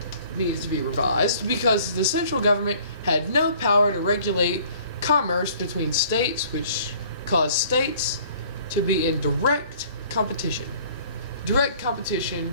needs to be revised because the central government had no power to regulate commerce between states, which caused states to be in direct competition. Direct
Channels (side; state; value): both; inverted; correlation -0.54